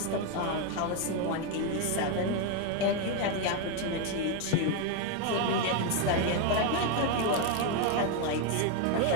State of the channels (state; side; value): different; both; correlation 0.02